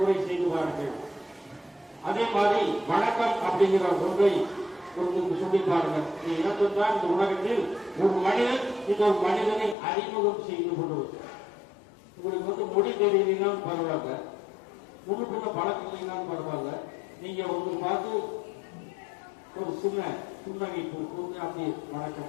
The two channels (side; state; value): right; drops out; at 9.8 s